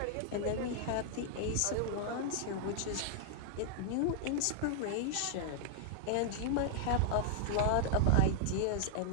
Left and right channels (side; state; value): both; different; correlation -0.01